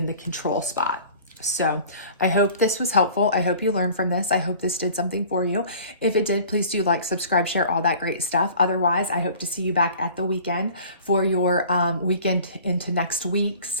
the control spot. So I hope this was helpful. I hope you learned from this. I hope this did something for you. If it did, please do like, subscribe, share, all that great stuff. Otherwise, I hope to see you back at the weekend for your weekend into next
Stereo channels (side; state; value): both; inverted; correlation -0.47